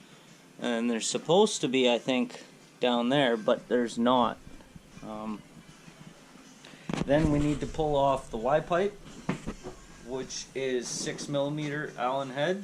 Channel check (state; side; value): identical; both; correlation 1.00